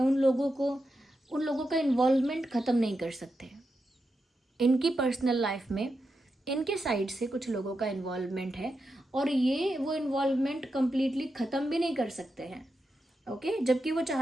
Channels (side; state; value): both; normal; correlation 0.87